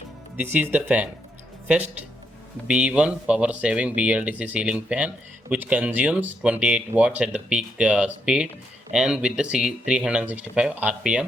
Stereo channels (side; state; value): both; normal; correlation 0.78